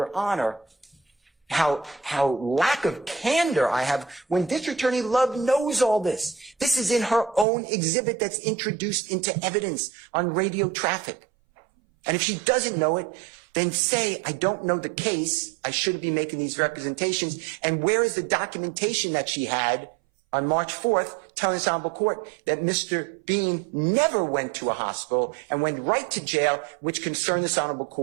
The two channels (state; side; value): drops out; left; at 7.5 s